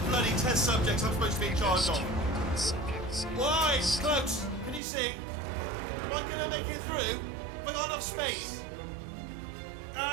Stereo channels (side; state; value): left; drops out; at 4.8 s